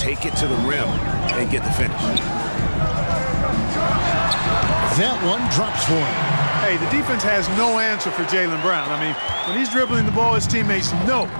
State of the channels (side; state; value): both; inverted; correlation -1.00